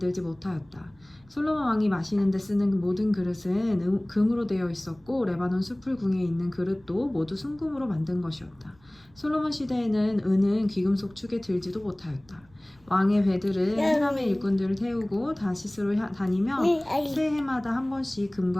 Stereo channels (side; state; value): right; noise; rumble, 29 dB below the sound